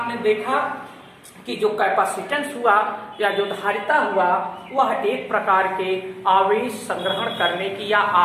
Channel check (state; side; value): identical; both; correlation 1.00